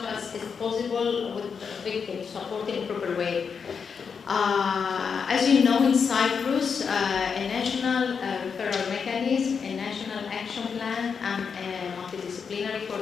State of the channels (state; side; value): quieter; right; 6.1 dB